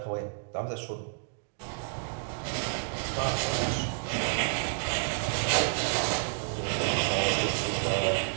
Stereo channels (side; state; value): left; silent; digital silence